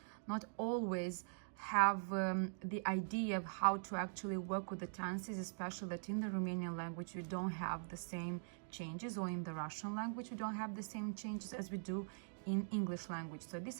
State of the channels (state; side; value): silent; left; digital silence